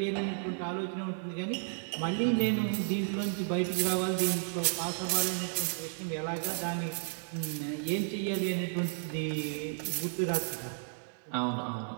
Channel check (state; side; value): silent; left; digital silence